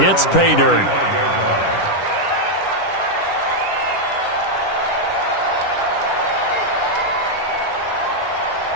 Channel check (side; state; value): right; late; 10 ms